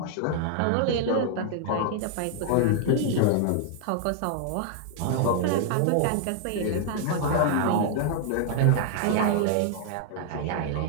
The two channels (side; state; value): both; different; correlation 0.00